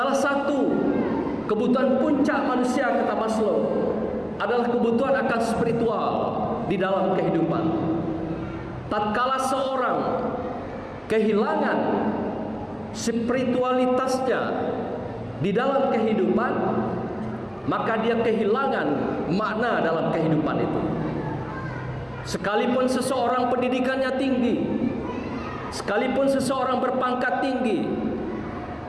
satu kebutuhan puncak manusia, kata Maslow, adalah kebutuhan akan spiritual di dalam kehidupan. Tatkala seorang kehilangan spiritualitasnya di dalam kehidupan, maka dia kehilangan makna dalam kehidupan itu. Sekalipun seseorang pendidikannya tinggi, sekalipun seseorang berpangkat tinggi,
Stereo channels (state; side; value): identical; both; correlation 1.00